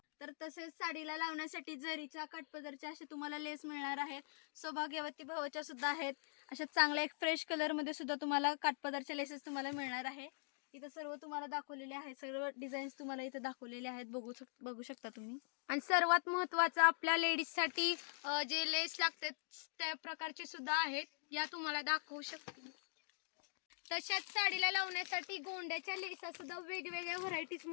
तर तसेच साडीला लावण्यासाठी जरीच्या, काठपदरच्या असे तुम्हाला लेस मिळणार आहेत. सौभाग्यवती भावाच्या सुद्धा आहेत. अशा चांगल्या एक फ्रेश कलर मध्ये सुद्धा तुम्हाला काठपदरच्या लेसेस तुम्हाला मिळणार आहे. इथं सर्व तुम्हाला दाखवलेले आहेत. सर्व डिझाईन्स तुम्हाला इथं दाखवलेले आहेत, बघू शकता तुम्ही. आणि सर्वात महत्वाचं आपल्या लेडीज साठी जे लेस लागतात त्या प्रकारचे सुद्धा आहेत. या तुम्हाला दाखवू शकते. तशाच साडीला लावण्यासाठी गोंड्याच्या लेसा सुद्धा वेगवेगळ्या व्हरायटीज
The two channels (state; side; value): silent; right; digital silence